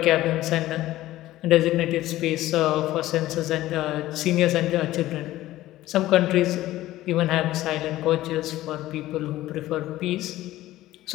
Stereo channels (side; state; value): right; quieter; 15.6 dB